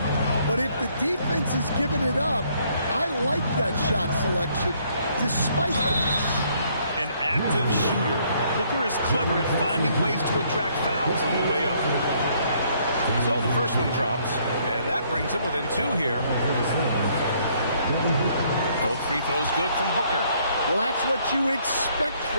but if the defense is giving it up, I like that shot selection, despite the miss. An active shooter. Booker is clever at finding ways to attract fouls on the way up. So the first one drops, and that brings him within 2 here. Both free throws good from Booker. Well, that's what you expect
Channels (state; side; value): inverted; both; correlation -0.67